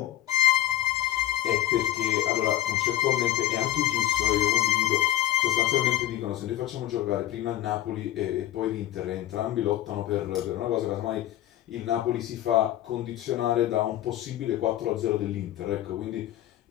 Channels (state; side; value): quieter; right; 13.0 dB